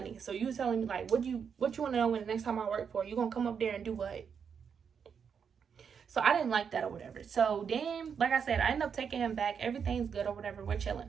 So you telling me like, what you want to know when the next time I work for you, gonna come up there and do what? So I didn't like that or whatever. So then, like I said, I ended up taking him back. Everything's good or whatever. We're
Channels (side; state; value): left; quieter; 6.9 dB